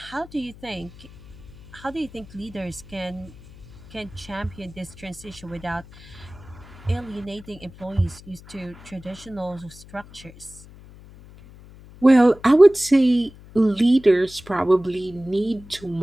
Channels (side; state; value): left; noise; hum, 20 dB below the sound